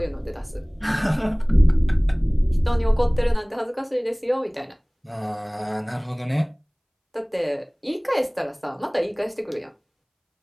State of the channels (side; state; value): both; identical; correlation 1.00